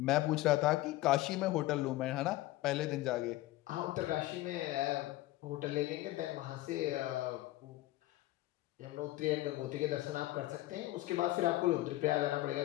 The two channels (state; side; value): quieter; right; 17.0 dB